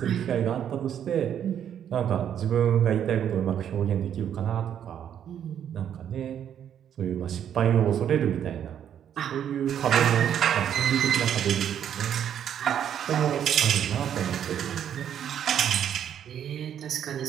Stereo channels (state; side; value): quieter; left; 9.4 dB